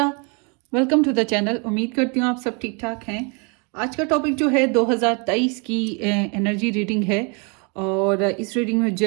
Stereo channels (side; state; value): left; quieter; 33.8 dB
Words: welcome to the channel. उम्मीद करती हूँ आप सब ठीक ठाक हैं। आज का टॉपिक जो है 2023 की एनर्जी रीडिंग है और इस रीडिंग में